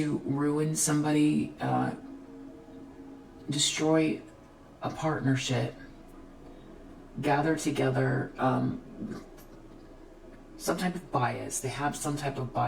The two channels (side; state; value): both; identical; correlation 1.00